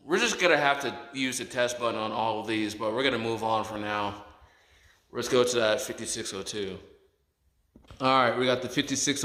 We're just gonna have to use the test button on all of these, but we're gonna move on for now. Let's go to that 5602. All right, we got the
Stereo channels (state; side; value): identical; both; correlation 1.00